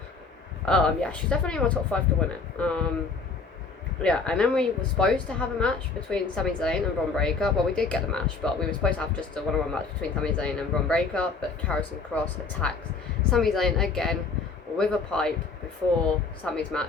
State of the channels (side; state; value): right; quieter; 4.4 dB